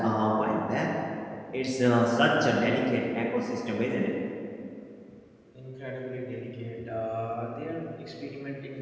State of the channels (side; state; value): both; identical; correlation 1.00